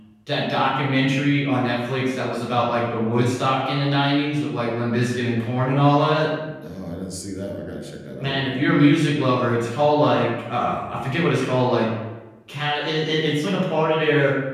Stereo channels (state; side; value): identical; both; correlation 1.00